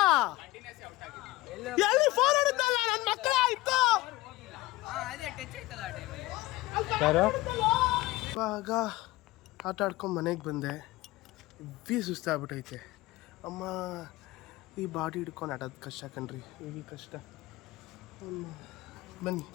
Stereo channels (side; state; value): right; quieter; 19.3 dB